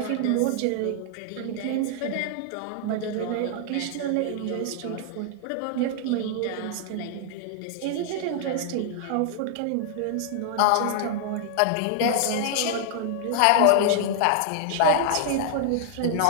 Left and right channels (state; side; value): different; both; correlation 0.00